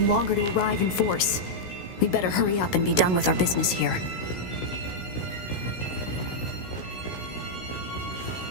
longer to arrive in force. We'd better hurry up and be done with our business here.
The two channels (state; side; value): late; right; 16 ms